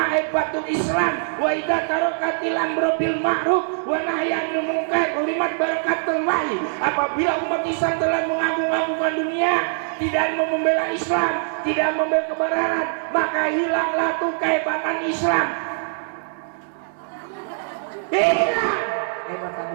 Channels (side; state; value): left; silent; 64 dB below the other